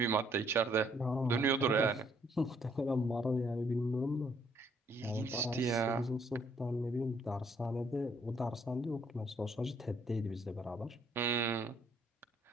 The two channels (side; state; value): both; normal; correlation 0.66